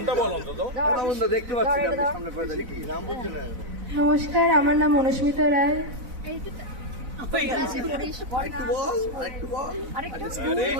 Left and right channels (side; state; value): left; late; 4.0 ms